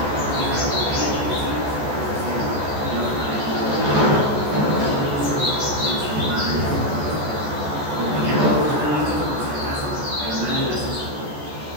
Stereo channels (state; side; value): late; left; 14 ms